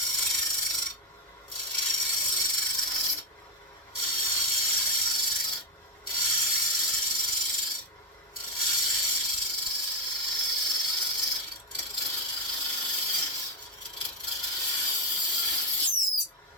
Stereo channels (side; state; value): both; normal; correlation 0.08